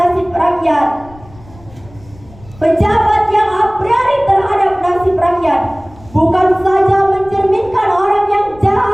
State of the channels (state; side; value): noise; left; rumble, 23 dB below the sound